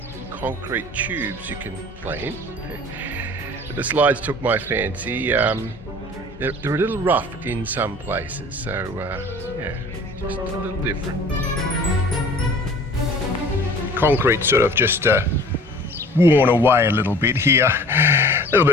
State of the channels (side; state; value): both; normal; correlation 0.46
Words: concrete tubes you can play in. But the slides took my fancy. They're a little rough in some places, so yeah, just a little different. Concrete sort of just worn away a little bit here. A little